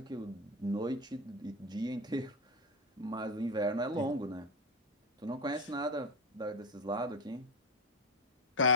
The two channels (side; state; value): both; normal; correlation 0.14